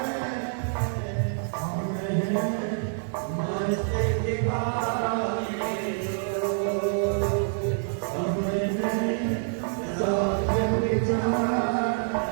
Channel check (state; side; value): silent; left; digital silence